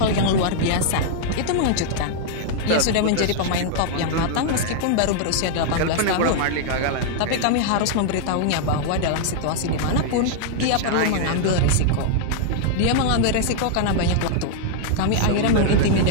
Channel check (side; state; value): both; different; correlation -0.01